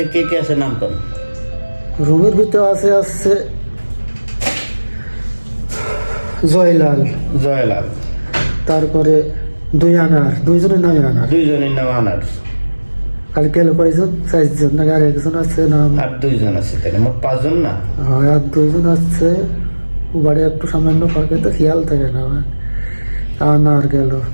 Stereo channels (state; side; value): inverted; both; correlation -1.00